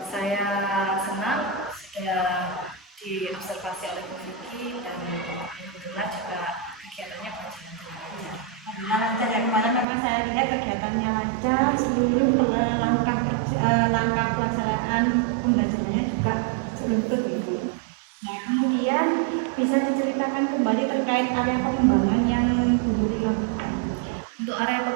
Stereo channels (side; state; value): left; drops out; at 9.9 s